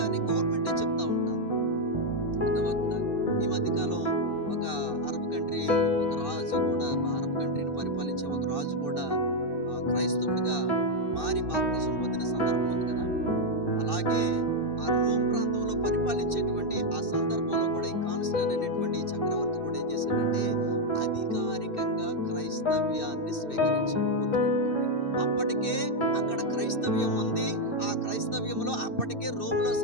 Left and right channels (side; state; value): right; late; 2.6 ms